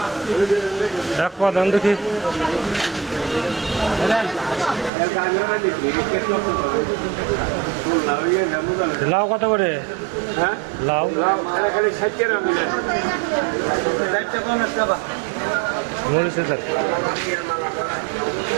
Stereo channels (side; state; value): left; drops out; at 4.9 s